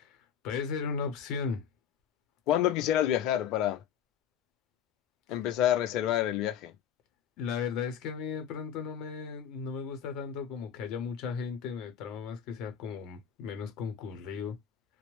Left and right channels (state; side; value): quieter; right; 9.0 dB